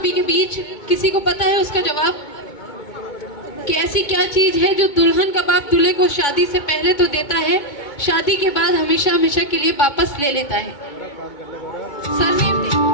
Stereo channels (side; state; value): right; late; 2.2 ms